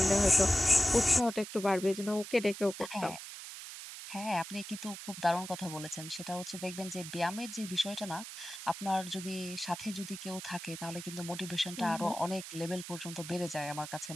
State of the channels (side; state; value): right; noise; hiss, 10 dB below the sound